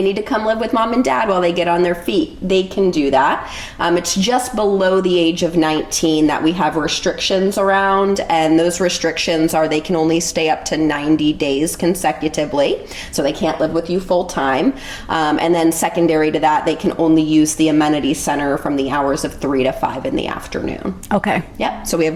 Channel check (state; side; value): identical; both; correlation 1.00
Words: need to come live with mom and dad while they get on their feet, they can do that. It's just below the age of 19 that we have restrictions around, and those restrictions are they can only stay up to 90 days consecutively, so they can't live with you full time. And then secondary to that, they can only use the amenity center from the hours of 3 to 5 in the afternoon. Okay. Yep. So we have